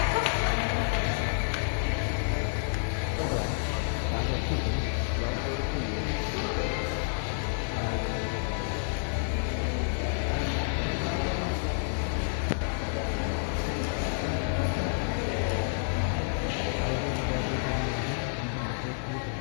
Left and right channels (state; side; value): silent; right; digital silence